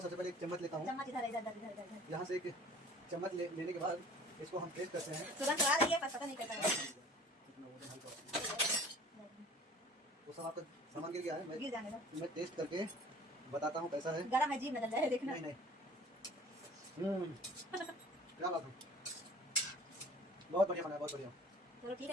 सबसे पहले एक चम्मच लेता हूँ। चम्मच इधर इधर इधर इधर इधर। यहाँ से एक चम्मच लेने के बाद इसको हम टेस्ट करते हैं। तुरंत आ रही है, पर पता नहीं कैसा है। वो सब आपका सामान गिर गया है, गिर जाने दो, मैं टेस्ट करके बताता हूँ कैसा है। गरम है, जीभ में डल जाए, देखना। नहीं नहीं, क्या बात है, बहुत बढ़िया बना है, बहुत बढ़िया। चलो ठीक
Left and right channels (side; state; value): both; normal; correlation 0.47